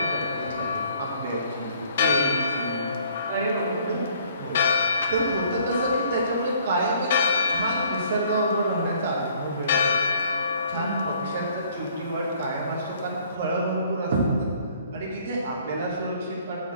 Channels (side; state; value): both; inverted; correlation -0.59